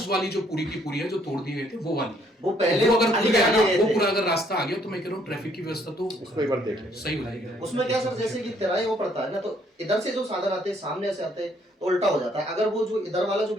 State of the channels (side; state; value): both; normal; correlation 0.66